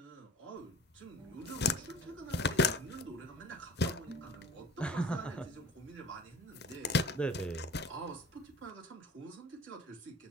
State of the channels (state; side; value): normal; both; correlation 0.42